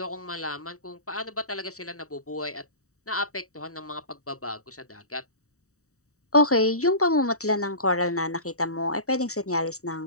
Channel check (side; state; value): right; late; 0.65 ms